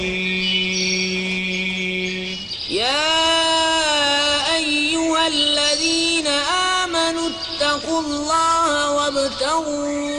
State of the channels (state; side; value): identical; both; correlation 1.00